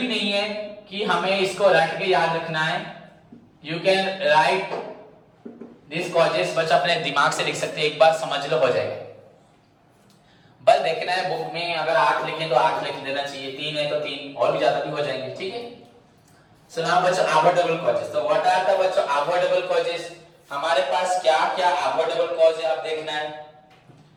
नहीं है कि हमें इसको रट के याद रखना है। You can write this causes, बच्चा अपने दिमाग से लिख सकते हैं, एक बार समझ लो हो जाएगा। बस देखना है बुक में अगर 8 लिखे तो 8 लिख देना चाहिए, 3 है तो 3 और भी ज्यादा भी हो जाएंगे, ठीक है। सो नाउ बच्चों अवॉइडेबल कॉजेस। तो व्हाट आर द बच्चों अवॉइडेबल कॉजेस? हमारे पास क्या क्या अवॉइडेबल कॉज है आप देखना है।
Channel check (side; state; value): both; identical; correlation 1.00